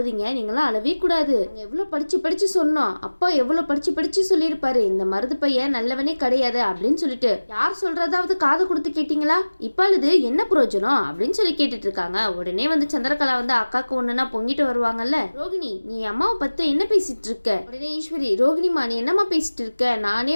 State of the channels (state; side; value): inverted; both; correlation -1.00